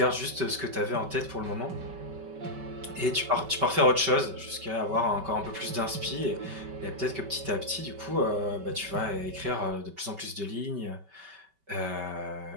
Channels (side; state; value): left; late; 5.2 ms